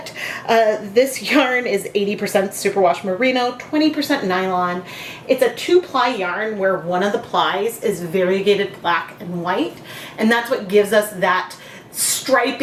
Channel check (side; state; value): both; identical; correlation 1.00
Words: This yarn is 80% superwash merino, 20% nylon. It's a 2-ply yarn where one of the plies is variegated black and white, and that's what gives us that